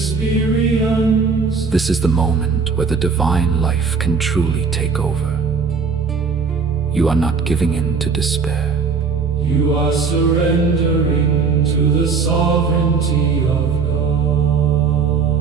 This is the moment where the divine life can truly take over. You are not giving in to despair. You are surrendering to the sovereignty of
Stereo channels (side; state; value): left; quieter; 5.2 dB